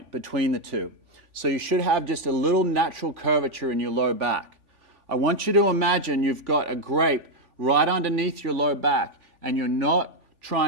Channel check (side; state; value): left; late; 3.5 ms